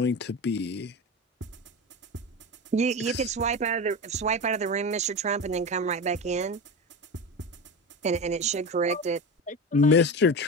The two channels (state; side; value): normal; both; correlation 0.24